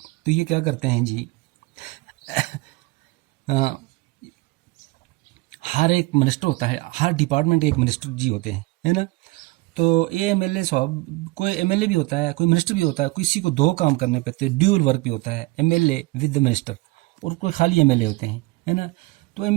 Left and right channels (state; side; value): quieter; left; 22.9 dB